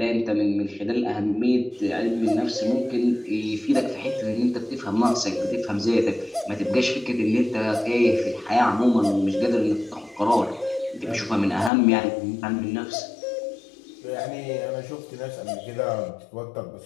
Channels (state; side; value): drops out; right; at 11.7 s